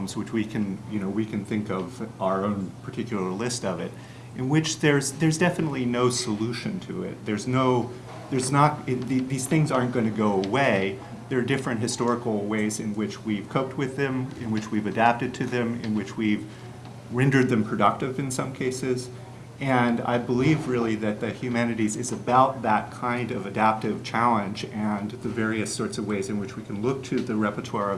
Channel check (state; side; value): identical; both; correlation 1.00